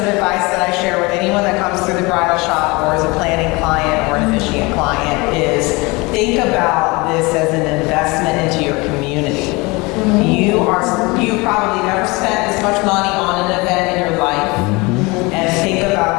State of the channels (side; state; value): right; quieter; 25.1 dB